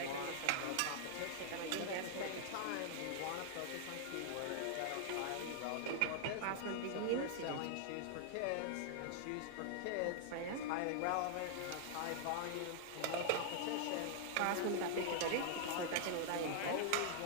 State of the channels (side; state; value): both; different; correlation 0.00